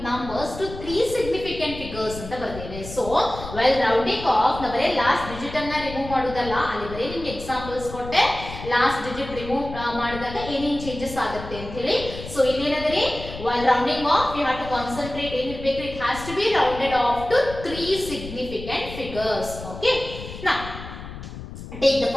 numbers to 3 significant figures ಅಂತ ಬರ್ದೇನೆ. So well rounding off ನ ಬರೇ last digit ಅನ್ನ ರಿಮೂವ್ ಮಾಡೋದಲ್ಲ, ಅಲ್ಲಿ ಬರೇ ನಿಮ್ಗೆ ಎಕ್ಸಾಂಪಲ್ಸ್ ಕೊಟ್ಟೆ ಲಾಸ್ಟ್ ಡಿಜಿಟ್ ರಿಮೂವ್ ಮಾಡಿದಾಗ ಏನೇನು ಚೇಂಜಸ್ ಆಗುತ್ತೆ ಅಂತ ಹೇಳಿ. ಸೊ ಇಲ್ಲಿ ಏನಂದ್ರೆ while rounding off you have to concentrate ಏನಿರಬೇಕು, it has to be rounded off to 3 significant figures. Okay. Now take the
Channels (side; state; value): left; noise; rumble, 11 dB below the sound